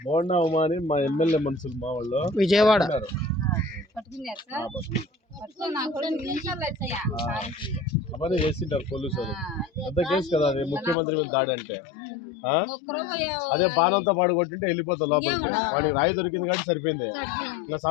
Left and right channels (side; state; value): right; drops out; at 11.0 s